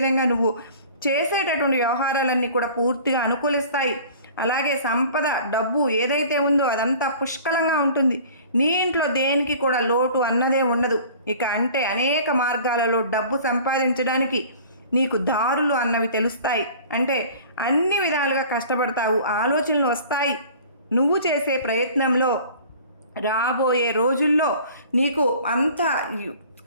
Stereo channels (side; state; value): both; inverted; correlation -0.45